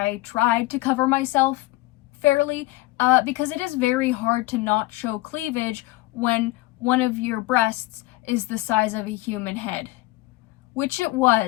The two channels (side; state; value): right; quieter; 19.3 dB